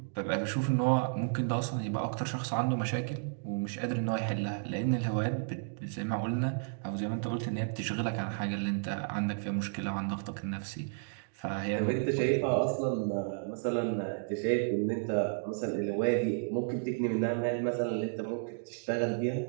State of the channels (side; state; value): left; silent; digital silence